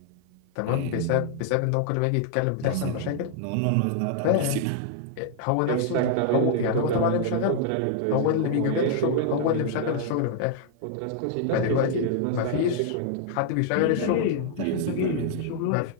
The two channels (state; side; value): different; both; correlation -0.01